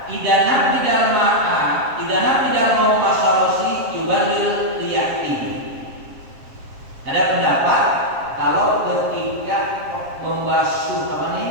idana bidal ma'a pasarasi yubalil liyati.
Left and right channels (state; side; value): late; left; 7.4 ms